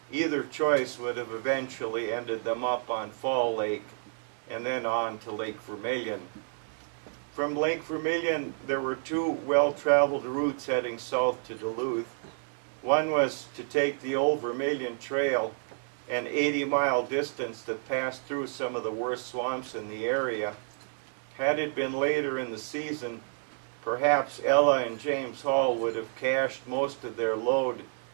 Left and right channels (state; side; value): silent; left; digital silence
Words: Either choice would have eventually ended them up on Fall Lake and then on to Lake Vermilion. From Lake Vermilion, there were two well-traveled routes heading south to Duluth. One was to take the Old Vermilion Trail, an 80-mile distance that passed through some of the worst swamps in the area. Had it been later in the season, perhaps Ella and James Hall would have cached most of their load